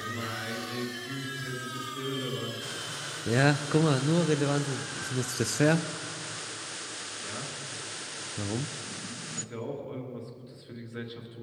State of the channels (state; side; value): identical; both; correlation 1.00